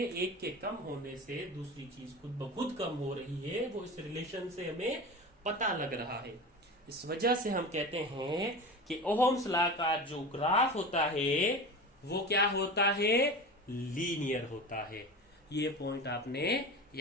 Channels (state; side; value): normal; both; correlation 0.30